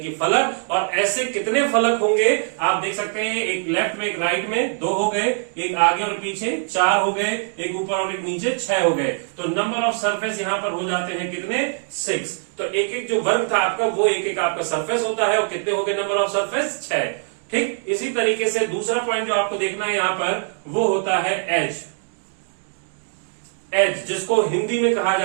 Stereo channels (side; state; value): left; silent; 59 dB below the other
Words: कि फलक। और ऐसे कितने फलक होंगे आप देख सकते हैं, एक लेफ्ट में, एक राइट में, 2 हो गए, एक आगे और पीछे 4 हो गए, एक ऊपर और एक नीचे 6 हो गए। तो नंबर ऑफ सरफेस यहां पर हो जाते हैं कितने? 6। तो एक एक जो वर्ग था आपका वो एक एक आपका सरफेस होता है। और कितने हो गए नंबर ऑफ सरफेस? 6। ठीक इसी तरीके से दूसरा पॉइंट जो आपको देखना है यहां पर वो होता है एज। एज जिसको हिंदी में कहा